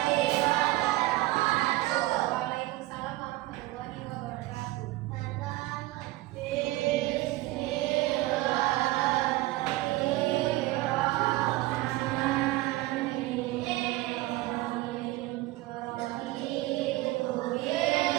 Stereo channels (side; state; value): left; quieter; 18.5 dB